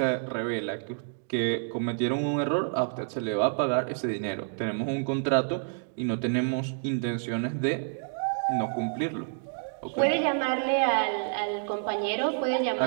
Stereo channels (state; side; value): silent; left; digital silence